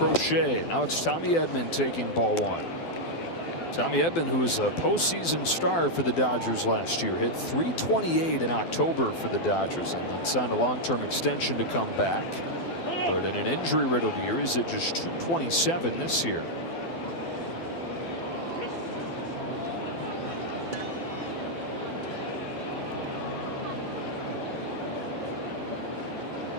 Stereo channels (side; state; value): right; late; 12 ms